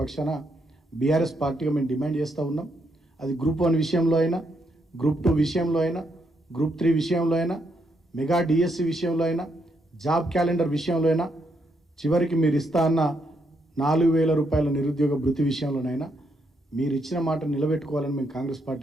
పక్షాన బీఆర్ఎస్ పార్టీగా మేము డిమాండ్ చేస్తూ ఉన్నాం. అది గ్రూప్ 1 విషయంలో అయినా, గ్రూప్ 2 విషయంలో అయినా, గ్రూప్ 3 విషయంలో అయినా, మెగా డిఎస్సి విషయంలో అయినా, జాబ్ క్యాలెండర్ విషయంలో అయినా, చివరికి మీరు ఇస్తా అన్న 4,000 రూపాయల నిరుద్యోగ భృతి విషయంలోనైనా మీరు ఇచ్చిన మాట నిలబెట్టుకోవాలని మేము కాంగ్రెస్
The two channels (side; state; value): both; normal; correlation 0.77